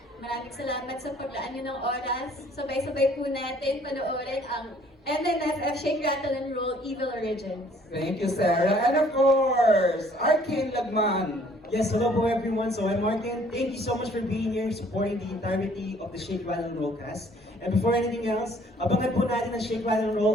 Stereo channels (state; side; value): normal; both; correlation 0.59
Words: Maraming salamat sa paglaan nyo ng oras. Sabay-sabay po natin panoorin ang MMFF Shake, Rattle, and Roll Evil Origins. Thank you, Sarah. And of course, Arcane Lagman. Yes, hello po everyone. So I'm Martin. Thank you so much for being here, supporting the entirety of the Shake, Rattle, and Roll cast. And before anything else, abangan po natin ang Shake, Rattle, and Roll